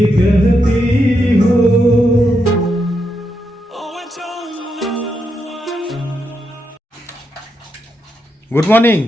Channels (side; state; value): both; normal; correlation 0.82